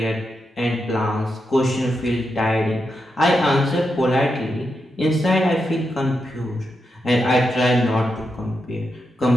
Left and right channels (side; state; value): both; normal; correlation 0.85